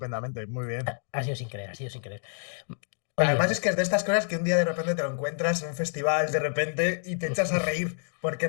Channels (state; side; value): silent; right; digital silence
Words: muy bien. Ha sido sin querer. Oye, Además es que es de estas cosas que un día de repente te lo encuentras en un festival de repente y te echas a reír porque